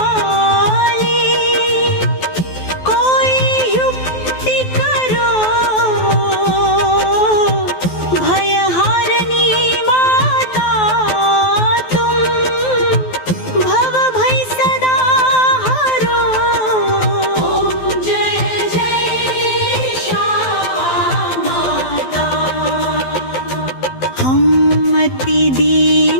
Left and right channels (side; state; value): right; late; 12 ms